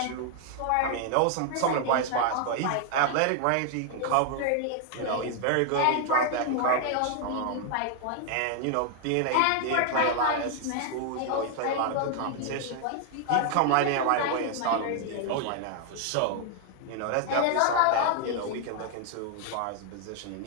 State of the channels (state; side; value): different; both; correlation 0.00